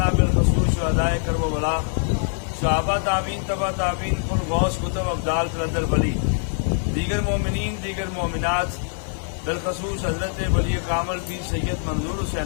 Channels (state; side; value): silent; right; digital silence